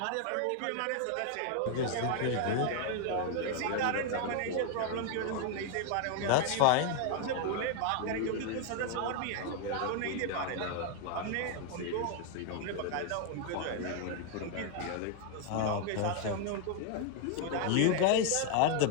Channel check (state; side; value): different; both; correlation 0.01